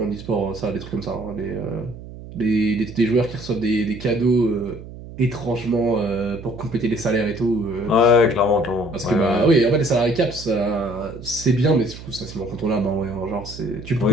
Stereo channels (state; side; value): noise; right; hum, 14 dB below the sound